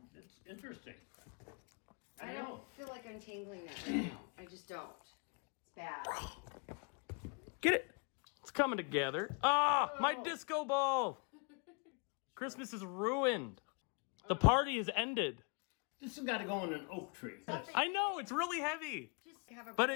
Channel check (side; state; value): right; quieter; 34.1 dB